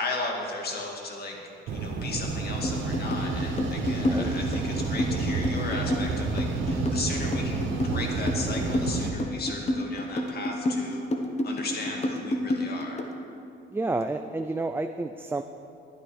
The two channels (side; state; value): both; normal; correlation 0.59